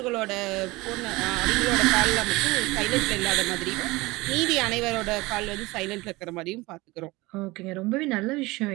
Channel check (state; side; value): quieter; left; 21.8 dB